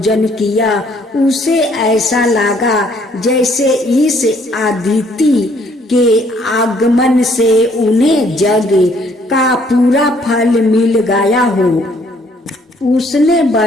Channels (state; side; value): normal; both; correlation 0.64